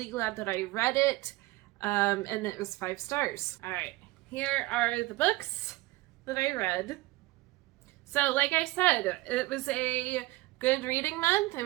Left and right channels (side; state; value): left; quieter; 20.0 dB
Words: glad that I read it, and it was 5 stars. All right, here are the books that I read. So like I said, it was a good reading month. It